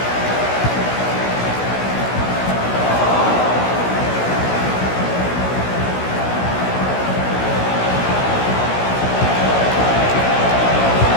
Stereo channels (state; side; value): late; right; 16 ms